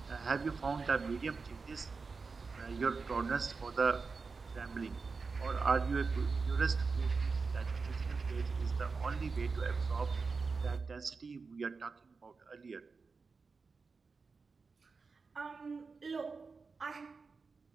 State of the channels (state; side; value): quieter; left; 4.6 dB